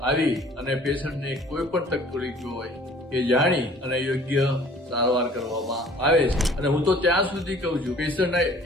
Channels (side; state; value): both; normal; correlation 0.52